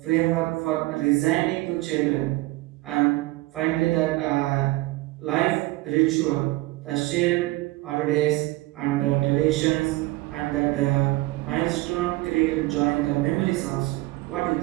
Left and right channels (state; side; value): quieter; left; 20.0 dB